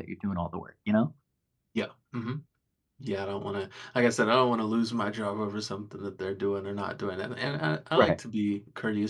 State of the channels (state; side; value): identical; both; correlation 1.00